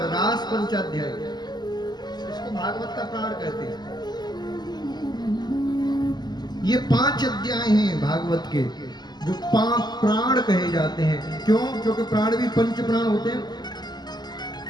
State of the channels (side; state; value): right; late; 0.20 ms